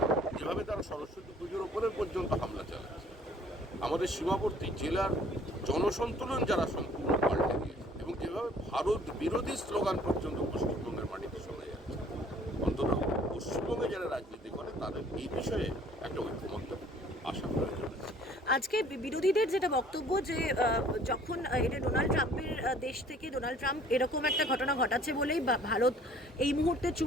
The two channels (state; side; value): normal; both; correlation 0.55